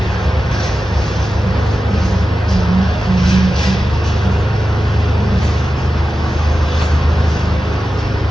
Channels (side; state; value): both; normal; correlation 0.93